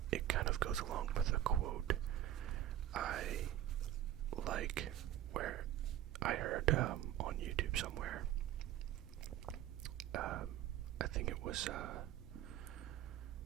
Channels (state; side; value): quieter; left; 12.1 dB